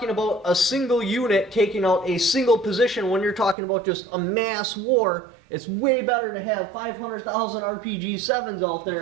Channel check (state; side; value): drops out; left; at 3.6 s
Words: about a single unit taking out a single position, when you're talking about just a mass war, it's way better to have 500,000 RPG-7s out